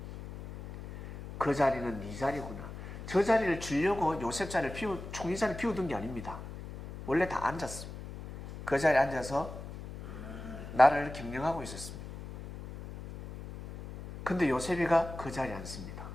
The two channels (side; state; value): left; noise; hum, 11 dB below the sound